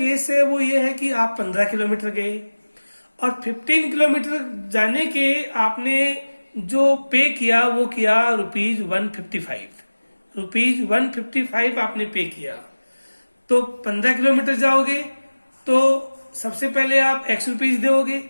है वो ये है कि आप 15 किलोमीटर गए और 15 किलोमीटर जाने के आपने जो पे किया वो किया ₹155, ₹155 आपने पे किया। तो 15 किलोमीटर जाओगे तो सबसे पहले आप एक्स रुपीज दोगे,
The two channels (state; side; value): inverted; both; correlation -1.00